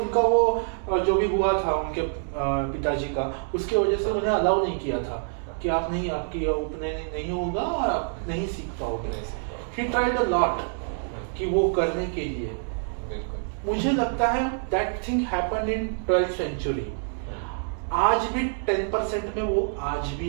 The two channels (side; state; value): left; silent; digital silence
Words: वो जो भी हुआ था उनके पिताजी का, उसके वजह से उन्हें अलाउ नहीं किया था कि आप नहीं, आपकी उपनयन नहीं होगा और आप नहीं सीख पाओगे। ही ट्राइड अ लॉट कि वो करने के लिए। मुझे लगता है that thing happened in 12th century. आज भी 10% में वो आज